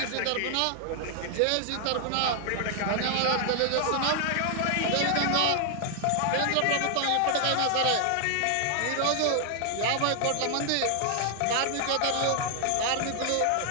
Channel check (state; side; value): different; both; correlation 0.00